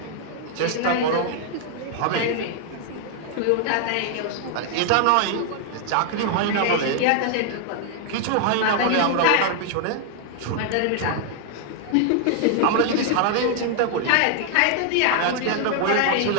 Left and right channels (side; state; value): both; different; correlation 0.00